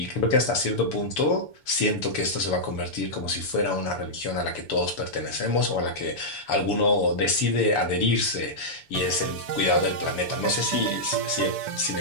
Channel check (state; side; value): late; right; 7.0 ms